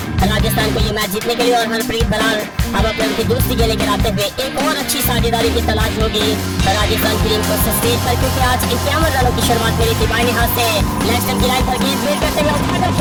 राजस्थान को ये मैच जीतने के लिए और हरप्रीत बरार अब अपने उनकी दूसरी गेंदें गिराते हुए एक और अच्छी साझेदारी की तलाश होगी राजस्थान की टीम को स्टेज पर, क्योंकि आज 51 रनों की शुरुआत करी थी। बाईं हाथ से लेग स्टंप की लाइन पर गेंद फेर करते हुए उठाकर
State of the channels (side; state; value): both; identical; correlation 1.00